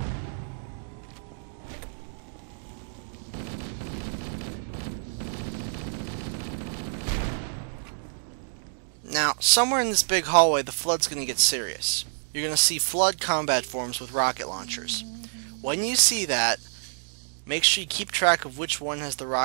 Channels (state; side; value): silent; left; digital silence